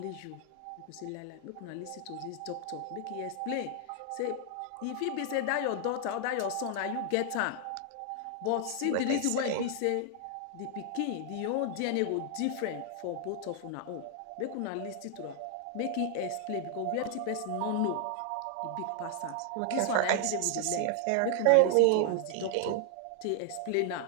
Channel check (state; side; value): different; both; correlation 0.00